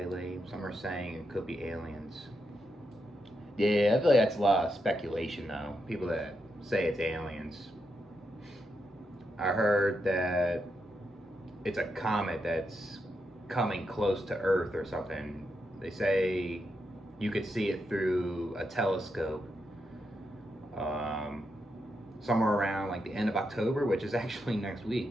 Some are saying it could be aliens. Yeah, I feel like that's a lot of speculation, though. People that say it's aliens. I heard that it's a comet that's coming close to Earth or something. They say you could see it through a telescope um, somewhere around like the end of October, which is actually next week,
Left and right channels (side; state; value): both; normal; correlation 0.84